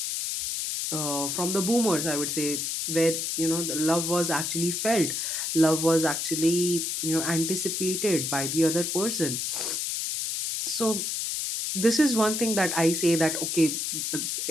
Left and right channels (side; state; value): left; noise; hiss, 2 dB below the sound